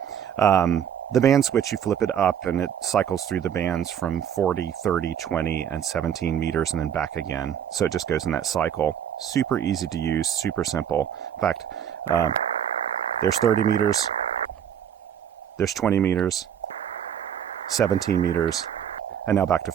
The band switch, you flip it up, and it cycles through the bands from 40, 30, 20, and 17 meters, and then back again. So it just goes in that cycle. Super easy to use, super simple. In fact, there's 30 meters, there's 20 meters, 17 meters, and now back to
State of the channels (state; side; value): quieter; left; 9.0 dB